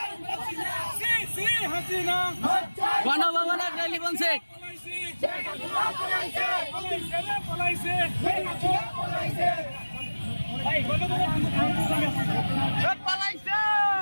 গণভবনের টেলিফোন সেট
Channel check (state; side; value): inverted; both; correlation -1.00